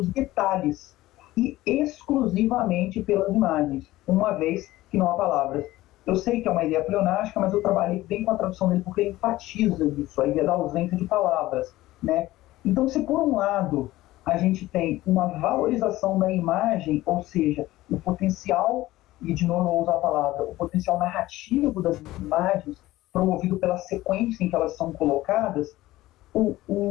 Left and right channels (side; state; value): right; quieter; 17.0 dB